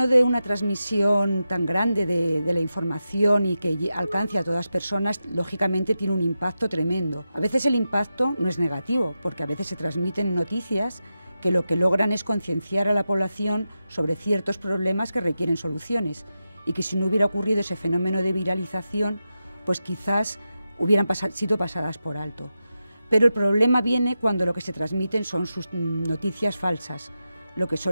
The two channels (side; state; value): both; inverted; correlation -0.91